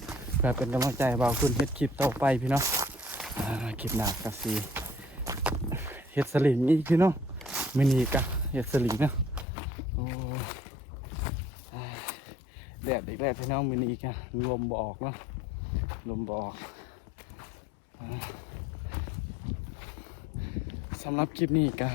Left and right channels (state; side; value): drops out; right; at 9.5 s